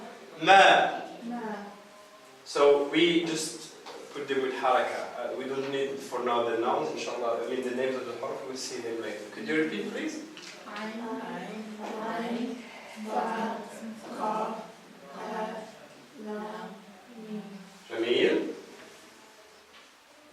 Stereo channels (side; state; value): both; identical; correlation 1.00